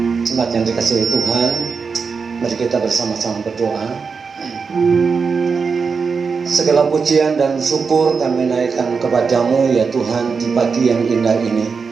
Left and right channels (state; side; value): quieter; left; 5.3 dB